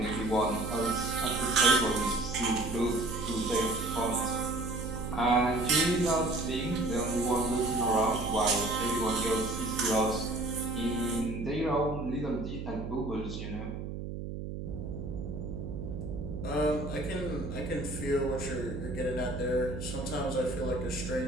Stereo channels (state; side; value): noise; right; hum, 6 dB below the sound